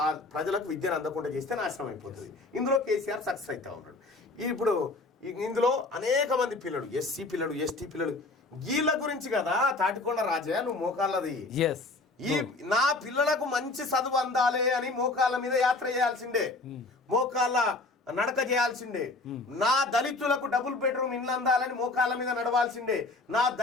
ఆ ప్రజలకు విద్యను అందకుండా చేస్తే నాశనం అయిపోతుంది. ఇందులో కేసీఆర్ సక్సెస్ అవుతా ఉన్నాడు. ఇప్పుడు ఇందులో అనేక మంది పిల్లలు, ఎస్సీ పిల్లలు, ఎస్టీ పిల్లలు, వీళ్ళ గురించి కదా తాటికొండ రాజయ్య నువ్వు మోకాళ్ళది. నా పిల్లలకు మంచి చదువు అందాలి అని మోకాళ్ళ మీద యాత్ర చేయాల్సిందే, మోకాళ్ళ నడక చేయాల్సిందే. నా దళితులకు డబుల్ బెడ్రూమ్ ఇల్లు అందాలని మోకాళ్ళ మీద నడవాల్సిందే. నా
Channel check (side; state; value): right; quieter; 3.3 dB